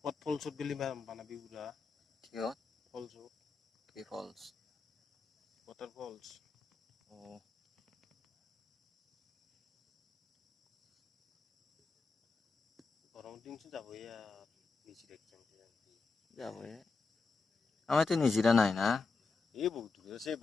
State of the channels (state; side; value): quieter; right; 4.3 dB